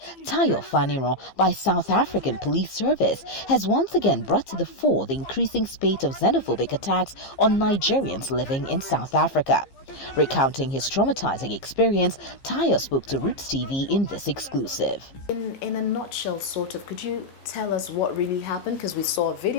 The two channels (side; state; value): right; late; 15 ms